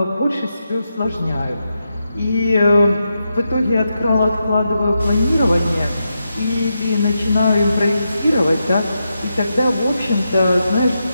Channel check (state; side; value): inverted; both; correlation -0.86